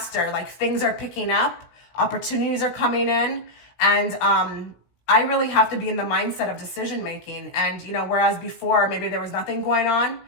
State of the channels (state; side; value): late; right; 16 ms